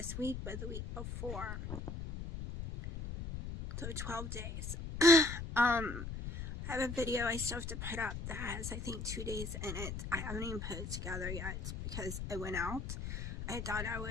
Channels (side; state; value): left; noise; rumble, 6 dB below the sound